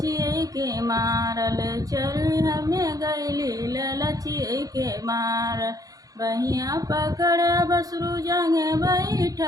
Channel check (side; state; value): left; late; 0.17 ms